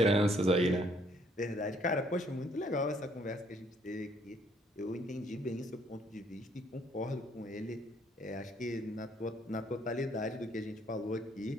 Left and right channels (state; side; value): normal; both; correlation 0.65